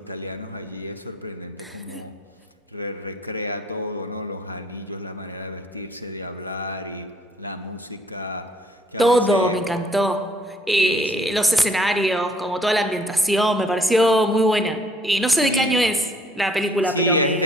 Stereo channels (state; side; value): normal; both; correlation 0.61